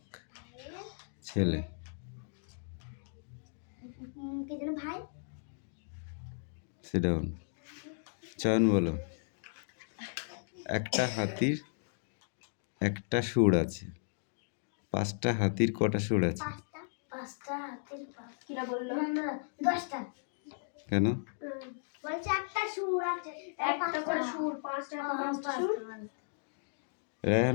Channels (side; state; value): right; silent; digital silence